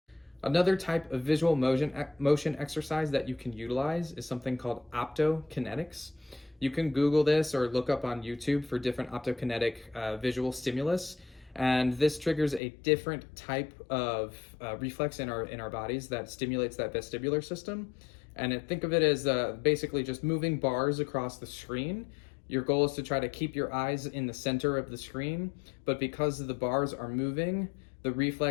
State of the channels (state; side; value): drops out; right; at 12.6 s